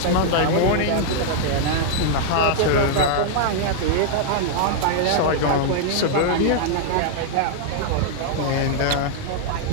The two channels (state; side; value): different; both; correlation -0.01